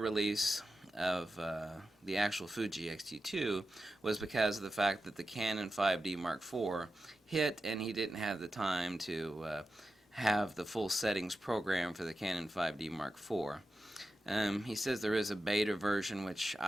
of the actual Fuji X-T2 was because of the fact that the Canon 5D Mark IV hit, and he didn't have the time to have the full settings programmed for the Canon 5D Mark IV. He says there is a beta version, which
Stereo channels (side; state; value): both; normal; correlation 0.91